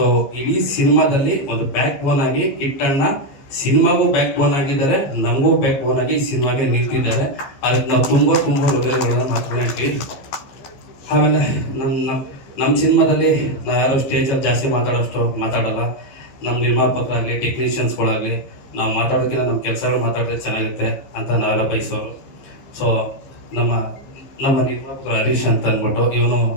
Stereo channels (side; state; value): right; late; 14 ms